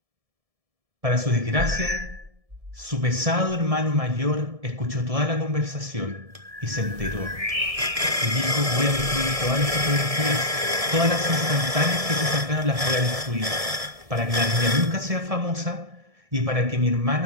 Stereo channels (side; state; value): left; late; 1.7 ms